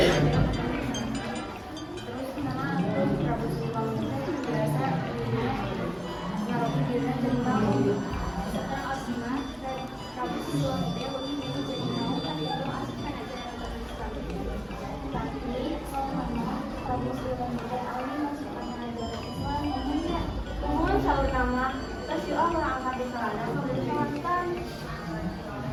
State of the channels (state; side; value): identical; both; correlation 1.00